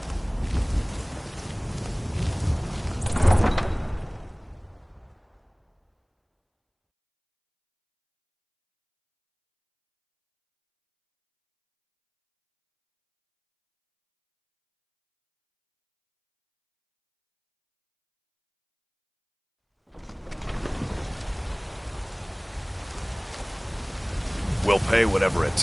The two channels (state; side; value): identical; both; correlation 1.00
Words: We'll pay whatever it